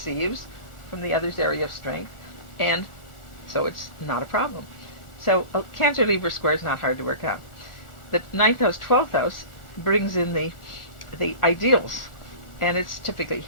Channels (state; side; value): late; right; 1.4 ms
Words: from the other's area of strength, and so it's not a problem. So a Cancer-Libra square is not hard to work out. The 9th house, 12th house brings in the ideals. And it's typically